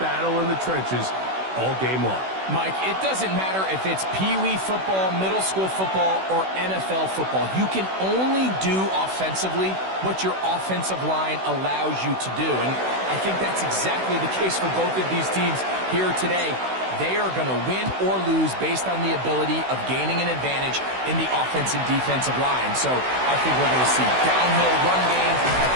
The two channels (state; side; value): late; left; 16 ms